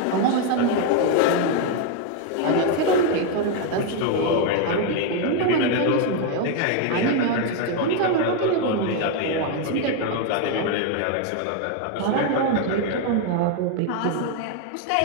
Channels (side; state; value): both; different; correlation 0.01